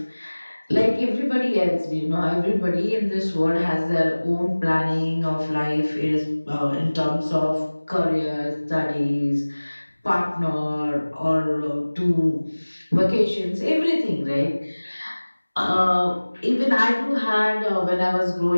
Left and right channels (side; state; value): both; inverted; correlation -1.00